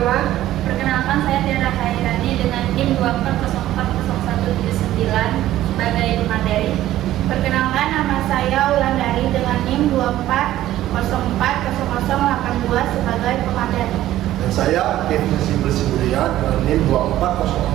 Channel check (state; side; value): quieter; left; 13.9 dB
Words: Perkenalkan, saya Tiara Khairani dengan NIM 2404179 sebagai pemateri. Perkenalkan, nama saya Wulandari dengan NIM 2404082 sebagai pemateri. Dan saya Kevin Sibulian dengan NIM